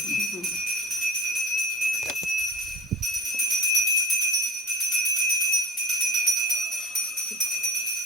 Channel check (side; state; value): both; normal; correlation 0.31